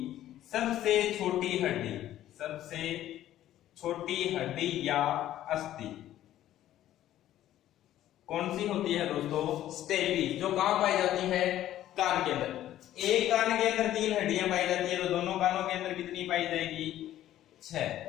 सबसे छोटी हड्डी या अस्थि कौन सी होती है दोस्तों? स्टेपिस। जो कहां पाई जाती है? कान के अंदर। एक कान के अंदर 3 हड्डियां पाई जाती है तो दोनों कानों के अंदर कितनी पाई जाएगी? 6।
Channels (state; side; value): quieter; right; 12.9 dB